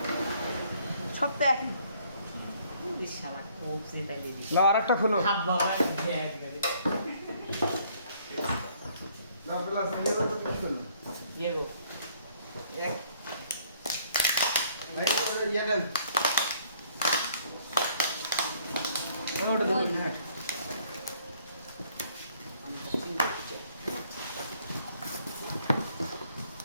সব তো একই। শালা খুব সেটাই না আরেকটা খুলো হাত বাবা একবারে না প্লাস ইয়ে তো কি করলো ইয়ে গো এক ভাই ইয়ে দেন ওটা দেখুন হ্যাঁ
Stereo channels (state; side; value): inverted; both; correlation -0.63